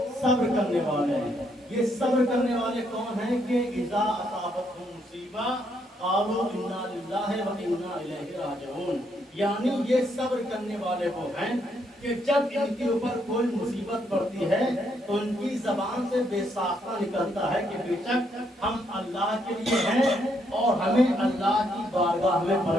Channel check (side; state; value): both; normal; correlation 0.74